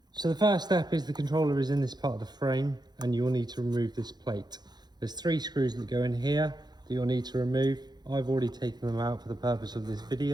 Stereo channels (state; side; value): late; left; 0.20 ms